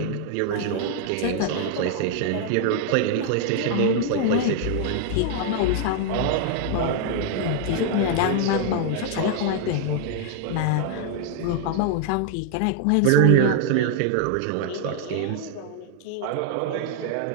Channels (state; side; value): different; both; correlation 0.00